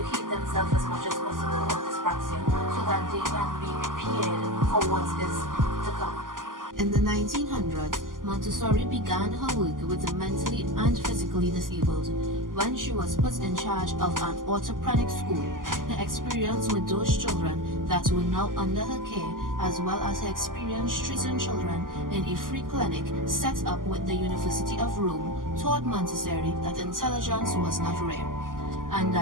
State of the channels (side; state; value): left; late; 0.90 ms